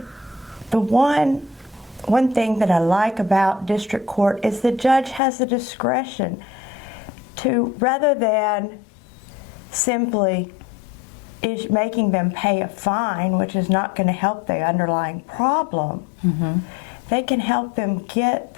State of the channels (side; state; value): right; drops out; at 5.2 s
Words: the one thing that I like about district court is the judge has the discretion to, rather than simply making them pay a fine, which is not going to help the underlying problem, they can help them get